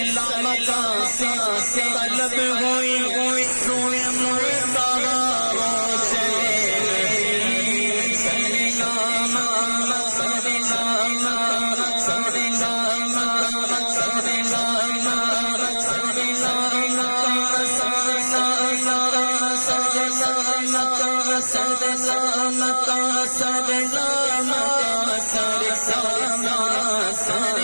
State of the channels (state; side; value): inverted; both; correlation -1.00